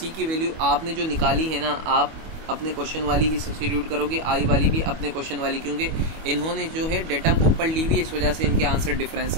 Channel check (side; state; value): left; late; 25 ms